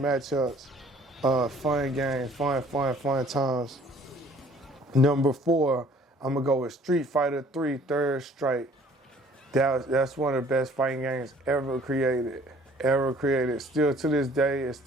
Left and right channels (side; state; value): both; normal; correlation 0.55